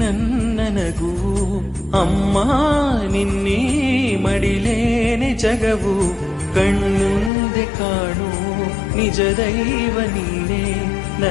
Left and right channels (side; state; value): right; drops out; at 7.3 s